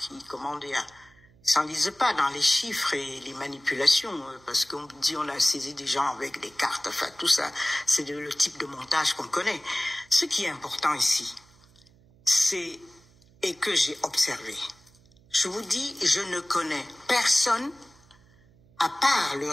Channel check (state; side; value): noise; right; hum, 29 dB below the sound